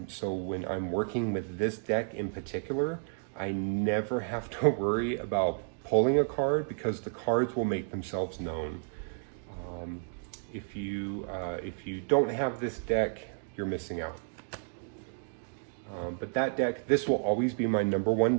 So when I'm working with this deck in particular, I never have to worry about pulling a card because the cards will make themselves known. If you don't have this deck, you're missing out. But that deck, this will always be my #1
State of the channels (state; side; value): silent; left; 57 dB below the other